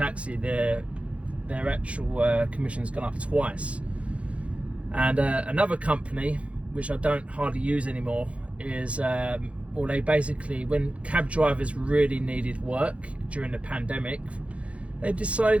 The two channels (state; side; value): late; left; 0.063 ms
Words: Their actual commission's gone up twice. And another company, which I don't hardly use anymore, is they basically, when cab drivers really needed work during the pandemic, they